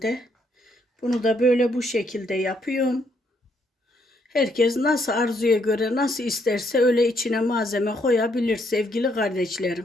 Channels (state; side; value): normal; both; correlation 0.72